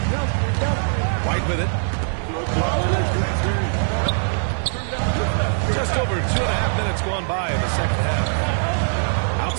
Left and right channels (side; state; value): left; silent; 63 dB below the other